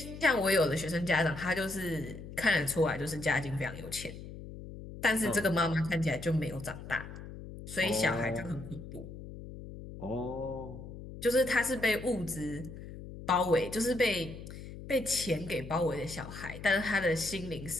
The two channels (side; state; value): left; noise; hum, 12 dB below the sound